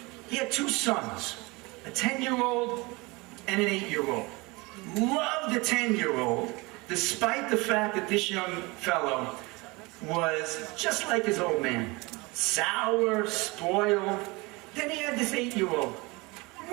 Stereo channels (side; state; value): left; quieter; 24.8 dB